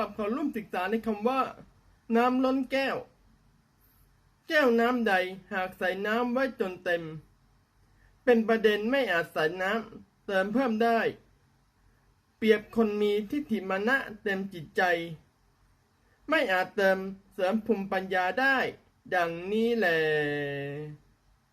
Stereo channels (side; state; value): both; identical; correlation 1.00